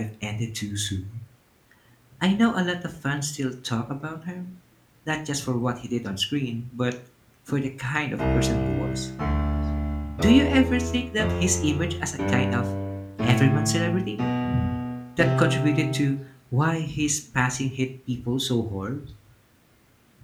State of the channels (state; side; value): identical; both; correlation 1.00